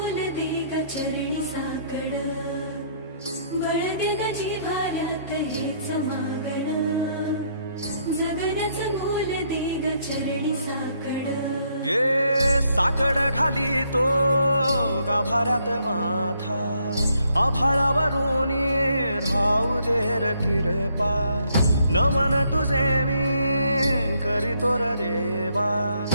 दे ग चरणी साकड, बळ दे ग जिव्हाऱ्यात हेच मागण, जगण्याचं मोल दे ग चरणी साकड. ये साकड घाली तो गाभाऱ्यात माथा, आभाळावरून राहू दे र कृपा. नमन तुझे मी करीतो र देवा,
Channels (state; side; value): inverted; both; correlation -0.71